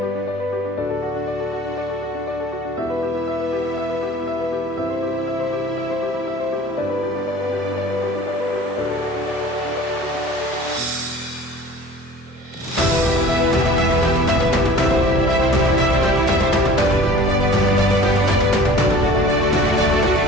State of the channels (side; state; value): both; normal; correlation 0.45